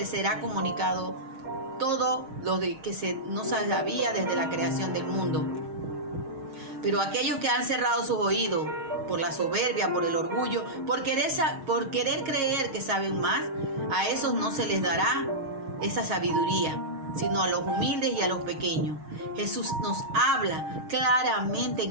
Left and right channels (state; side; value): late; left; 6.4 ms